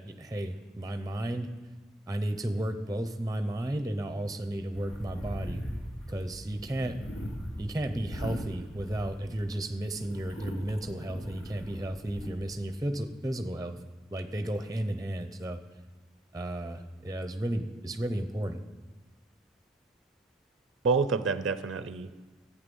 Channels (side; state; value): both; normal; correlation 0.74